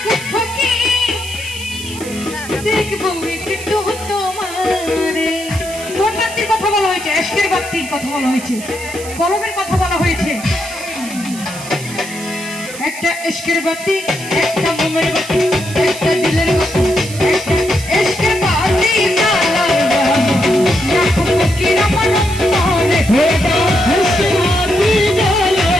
ফকি, দেখবো একটু তোমারে। কোন বাতির কথা বলা হয়েছে? এশকের বাতির কথা বলা হয়েছে, কলমের কথা বলা হয়েছে। একটা এশকের বাতি, একটা মোমের বাতি, একটা দিলের বাতি, একটা এশকের বাতি জ্বালাইয়া আকুল ফকির আমার অন্তরে।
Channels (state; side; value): noise; right; hiss, 13 dB below the sound